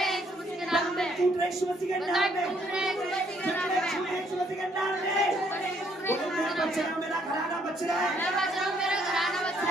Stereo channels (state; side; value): normal; both; correlation 0.68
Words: में, टूट रहे यीशु मसीह के नाम में, यीशु मसीह के नाम में, बोलो मैं बच रहा हूँ, मेरा घराना बच रहा है,